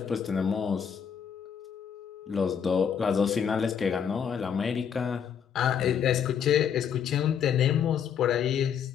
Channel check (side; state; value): right; quieter; 7.8 dB